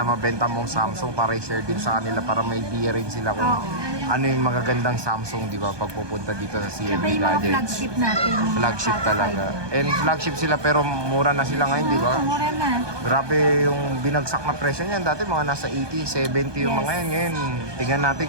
mabenta mong Samsung para i-share din sa kanila para may idea rin sila kung ano yung magagandang Samsung, di ba, pag pupunta dito sa CMB yung mga Gadgets. flagship natin. Flagship talaga. And flagship sila pero mura na sila ngayon, di ba? Mura na. Grabe yung binagsak na presyo niyan. Dati mga nasa 80, 70 yung mga yan. Ngayon, tingnan natin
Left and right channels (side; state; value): left; late; 1.2 ms